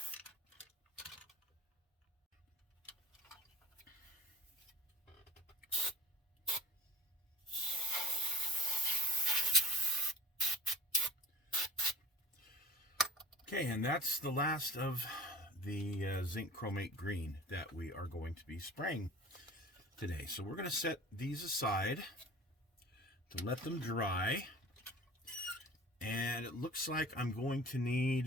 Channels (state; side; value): normal; both; correlation 0.40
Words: Okay, and that's the last of the zinc chromate green that we are going to be spraying today. So we're going to set these aside to let them dry, and it looks like I'm going to